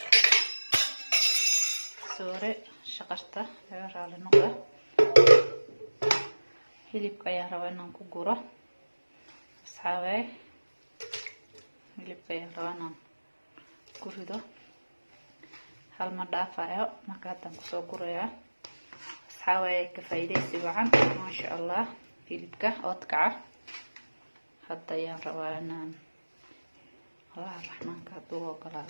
soore shaqarta laga raali noqda. hilibka ayaan rabaa inaan ku guro asxaabe. hilibka ayaan rabaa inaan ku rido hal ma dhaafayo. marka haddaan kusoo gurayaa asxaabe. ka faa'iideysi wacan ma sha Allah. hilibka oodkaca hadda ayaan rabaa inaan Allah raxmaanka hadduu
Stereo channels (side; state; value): both; inverted; correlation -1.00